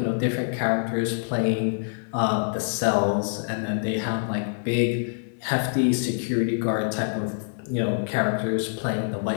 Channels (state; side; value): silent; right; 59 dB below the other